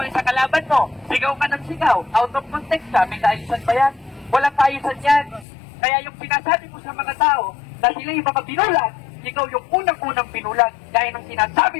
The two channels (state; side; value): drops out; right; at 5.5 s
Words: sa kalaban mo, sigaw ka ng sigaw, out of context ka, may kaayusan ba yan? Walang kaayusan yan. Kaya yung sinasabi mo sa mga tao, na sila yung mga binulag, ikaw yung unang-unang binulag, gaya ng sinasabi